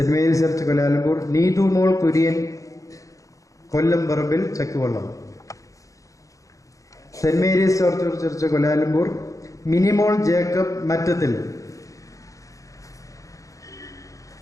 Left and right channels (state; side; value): late; right; 0.16 ms